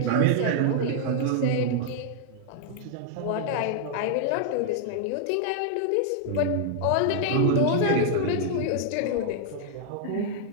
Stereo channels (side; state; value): both; different; correlation 0.00